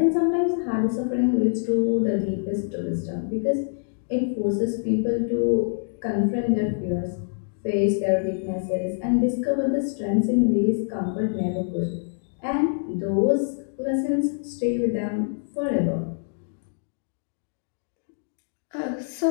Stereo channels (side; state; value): right; silent; digital silence